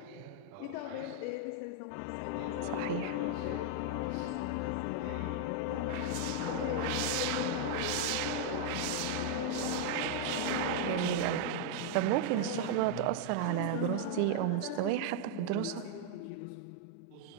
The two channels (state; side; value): different; both; correlation 0.00